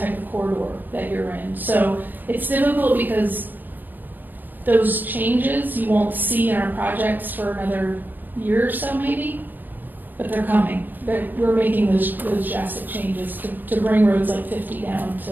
of corridor that you're in. So it's difficult because those changes you won't see in our projects for another year or so maybe, but they're coming. We're making those drastic changes to bring roads like 50 down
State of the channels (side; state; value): left; late; 0.088 ms